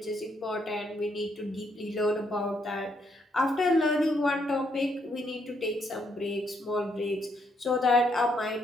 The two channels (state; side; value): normal; both; correlation 0.74